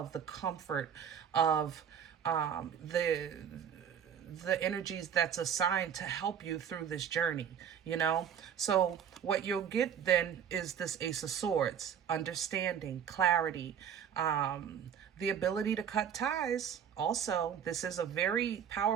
the comfort of the energies that's assigned to help you through this journey, you know? So what you'll get then is this Ace of Swords, understanding, clarity, the ability to cut ties. Also, this is a very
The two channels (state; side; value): quieter; left; 8.2 dB